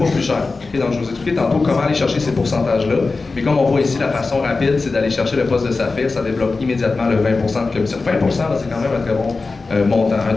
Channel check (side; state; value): right; quieter; 3.9 dB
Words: plus cher. Okay? Donc je vous expliquais tantôt comment aller chercher ces pourcentages-là. Mais comme on voit ici, la façon rapide, c'est d'aller chercher le poste de saphir. Ça développe immédiatement le 20 % de commission. 20 %, c'est quand même un très bon montant,